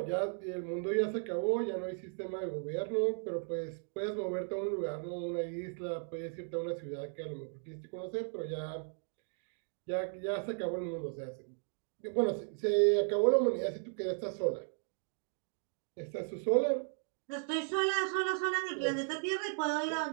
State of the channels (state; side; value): silent; left; 54 dB below the other